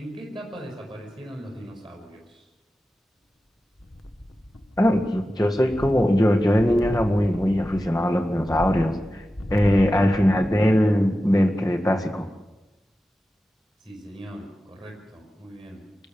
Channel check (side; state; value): both; normal; correlation 0.93